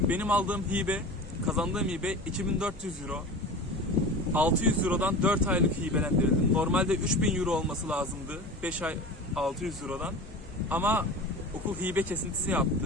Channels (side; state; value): both; normal; correlation 0.33